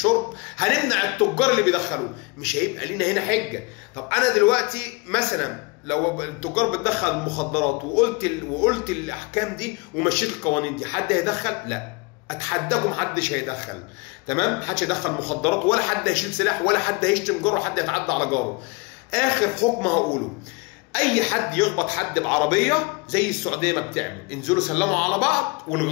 هنمنع التجار اللي بيدخلوه. مش هيبقى لينا هنا حجه. طب انا دلوقتي مثلا لو التجار بتدخل المخدرات وقلت الاحكام دي ومشيت القوانين دي، حد هيدخل؟ لا، اتحداكم محدش هيدخل. تمام؟ محدش هيدخل مخدرات، ولا حد هيشيل سلاح، ولا حد هيشتم جاره، ولا حد هيتعدى على جاره. اخر حكم هقوله، اي حد يخبط حد بعربيه زي السعوديه ما بتعمل، انزلوا سلموا على بعض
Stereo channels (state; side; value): quieter; right; 27.8 dB